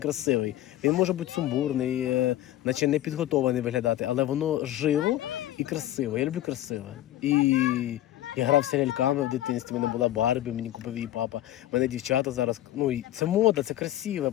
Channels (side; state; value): right; quieter; 13.9 dB